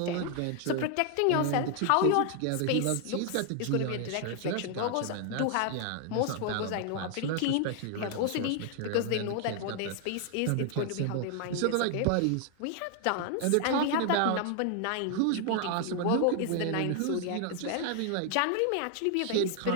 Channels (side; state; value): both; different; correlation 0.00